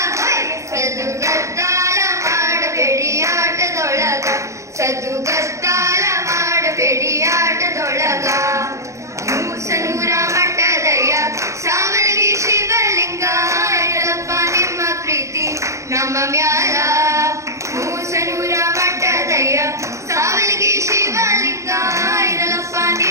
ಹೋಯ್ ಸದ್ದುಗದ್ದಾಲ ಮಾಡಬೇಡಿ ಆಟದೊಳಗ, ಸದ್ದುಗದ್ದಾಲ ಮಾಡಬೇಡಿ ಆಟದೊಳಗ. ಮೂಸನೂರ ಮಠದಯ್ಯ ಸಾವಳಗಿ ಶಿವಲಿಂಗ, ಇರಲಪ್ಪ ನಿಮ್ಮ ಪ್ರೀತಿ ನಮ್ಮ ಮ್ಯಾಲ. ಮೂಸನೂರ ಮಠದಯ್ಯ ಸಾವಳಗಿ ಶಿವಲಿಂಗ, ಇರಲಪ್ಪ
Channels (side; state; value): left; late; 0.15 ms